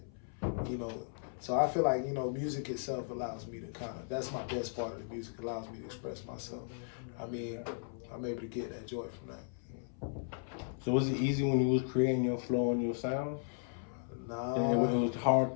So I feel like, music itself allows me to that's my best part of the music, allows me to express myself. I mean, I'm able to get that joy from that. So was it easy when you was creating your flow and your sound? Nah. And it was hard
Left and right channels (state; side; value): silent; right; 54 dB below the other